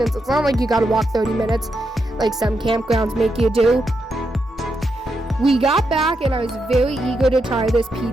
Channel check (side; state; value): both; normal; correlation 0.83